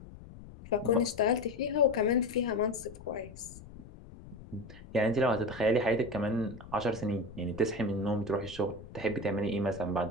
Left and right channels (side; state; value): left; noise; rumble, 17 dB below the sound